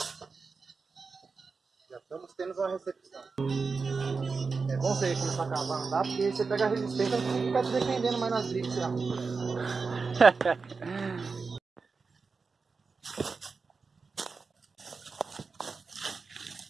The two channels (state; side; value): quieter; left; 4.7 dB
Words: Já estamos tendo uma recepção. É bom você começar a cavar, não dá? Porque você pega a resistência e fica te defendendo mais nas brigas, sei lá.